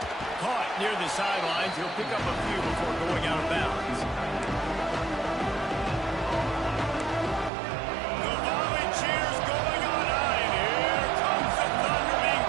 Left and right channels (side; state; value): left; drops out; at 7.5 s